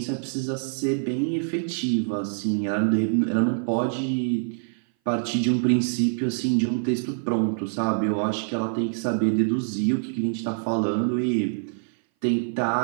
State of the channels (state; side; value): silent; left; 58 dB below the other